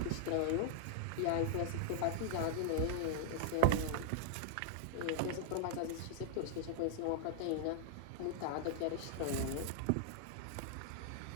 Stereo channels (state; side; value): different; both; correlation -0.01